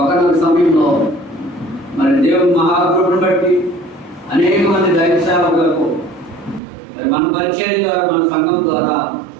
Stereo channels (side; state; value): left; drops out; at 6.6 s